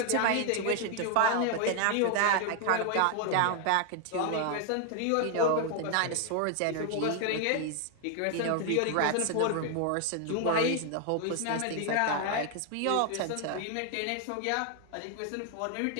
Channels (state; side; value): different; both; correlation 0.00